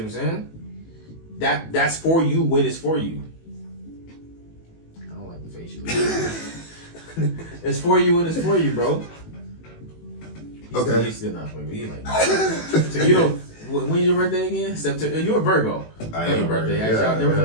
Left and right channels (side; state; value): right; late; 18 ms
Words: I'm saying? That's for you when it's for you. I don't like the face you look. It's for you when it's for you, bro. He's still not for me. He's like, so you don't. When's your birthday again? September. You're a Virgo. I am a birthday. Virgo. Actually, I'll never